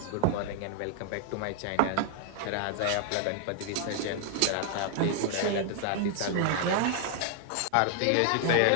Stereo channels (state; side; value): different; both; correlation 0.00